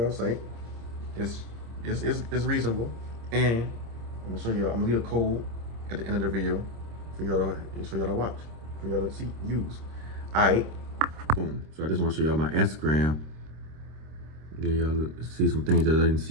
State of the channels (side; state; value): left; late; 26 ms